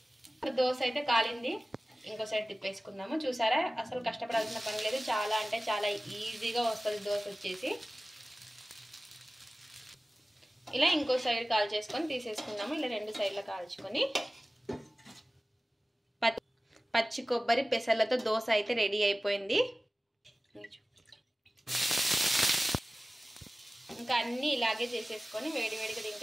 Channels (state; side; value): normal; both; correlation 0.97